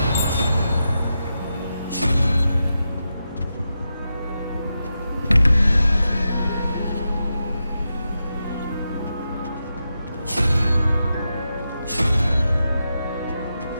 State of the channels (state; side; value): inverted; both; correlation -0.88